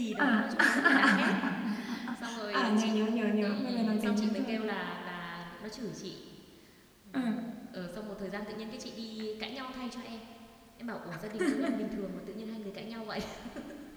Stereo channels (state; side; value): identical; both; correlation 1.00